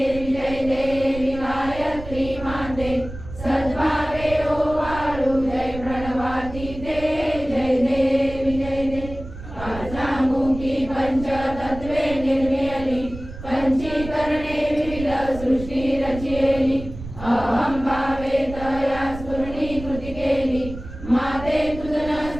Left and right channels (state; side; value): noise; right; rumble, 12 dB below the sound